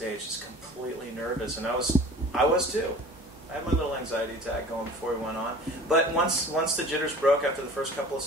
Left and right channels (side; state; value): both; normal; correlation 0.43